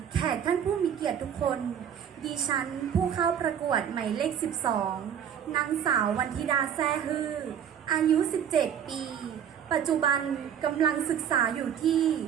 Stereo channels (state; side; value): quieter; left; 8.8 dB